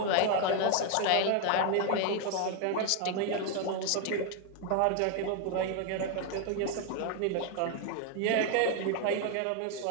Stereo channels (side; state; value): both; different; correlation 0.00